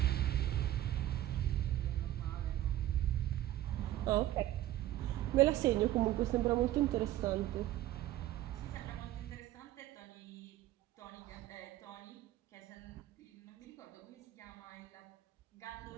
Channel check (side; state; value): left; quieter; 13.9 dB